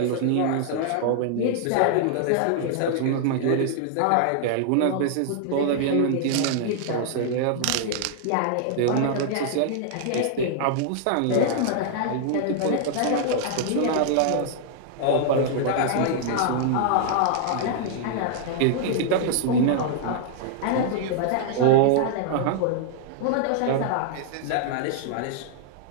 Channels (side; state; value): both; different; correlation -0.01